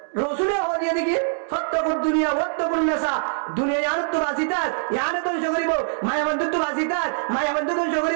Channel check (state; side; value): silent; left; 63 dB below the other